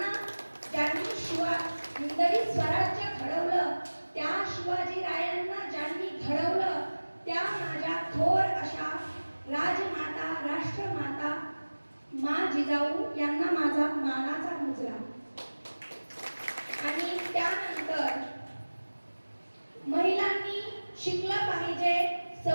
ज्यांनी हिंदवी स्वराज्य घडवलं, त्या शिवाजी रायांना ज्यांनी घडवलं, त्या माझ्या थोर अशा राजमाता, राष्ट्रमाता मा जिजाऊ यांना माझा मानाचा मुजरा. आणि त्यानंतर महिलांनी शिकलं पाहिजे,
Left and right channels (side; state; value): both; inverted; correlation -1.00